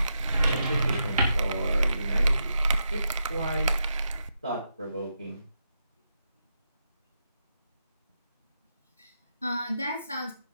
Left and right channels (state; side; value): inverted; both; correlation -0.84